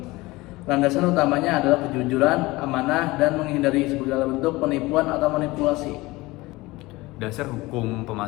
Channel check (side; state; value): right; quieter; 20.8 dB